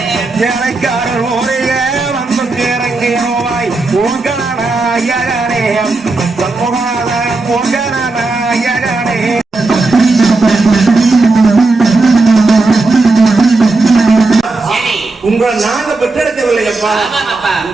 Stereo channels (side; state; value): left; quieter; 3.4 dB